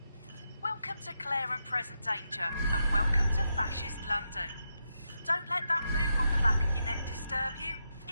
Welcome to Claire and Present Danger, and welcome to Fascist London. Don't let that boot on the back of your neck disturb you.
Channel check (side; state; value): both; inverted; correlation -0.84